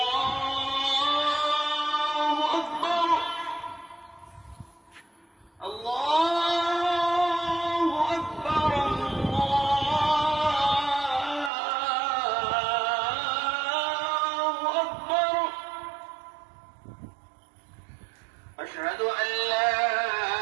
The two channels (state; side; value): drops out; left; at 11.5 s